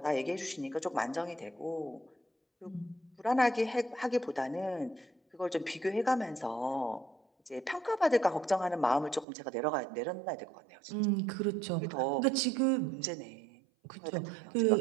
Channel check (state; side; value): drops out; left; at 9.2 s